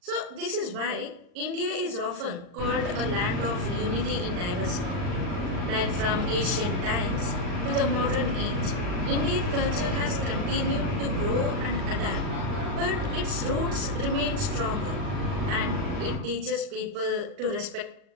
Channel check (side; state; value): left; late; 39 ms